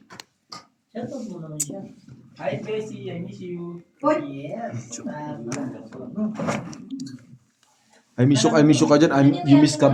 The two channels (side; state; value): both; identical; correlation 1.00